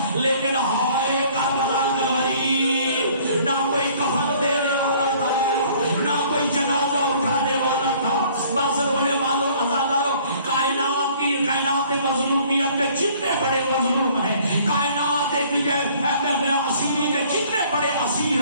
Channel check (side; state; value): both; inverted; correlation -0.56